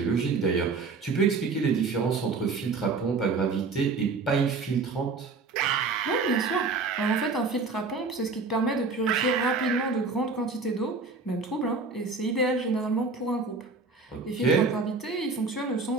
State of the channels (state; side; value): quieter; left; 4.2 dB